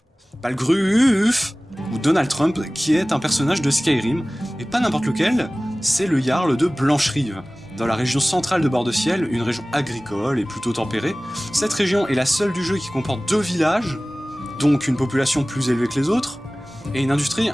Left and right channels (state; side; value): normal; both; correlation 0.98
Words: ou Donald Trump, qui est un personnage de Skyrim, et pas n'importe lequel, c'est le Jarl de Blancherive. Dans la région centrale de Bord-de-Ciel, une région agricole et plutôt tempérée, cette région est la seule du jeu qui comporte 2 villages, donc une population plus élevée que les autres, et une industrie